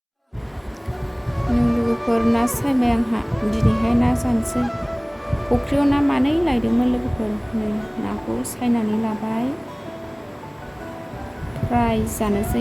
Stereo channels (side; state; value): both; identical; correlation 1.00